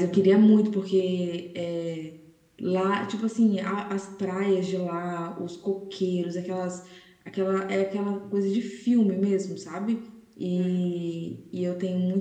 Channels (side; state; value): both; identical; correlation 1.00